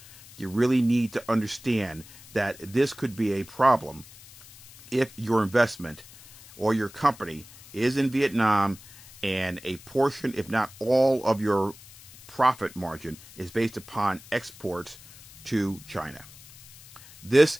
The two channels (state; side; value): noise; left; hiss, 20 dB below the sound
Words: you really need to understand that this could be a problem if your investment or your company is in Vietnam and a portion, if not all, of your profit margin is based upon exports to China. This